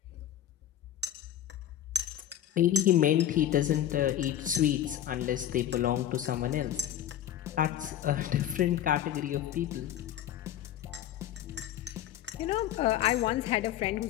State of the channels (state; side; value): quieter; right; 11.3 dB